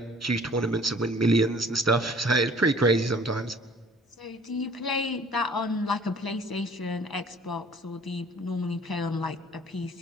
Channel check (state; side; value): normal; both; correlation 0.52